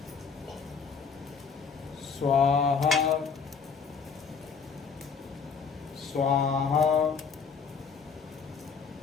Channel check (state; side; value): quieter; right; 5.7 dB